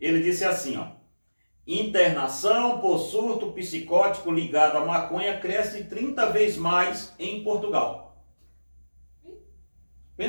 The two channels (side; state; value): both; inverted; correlation -1.00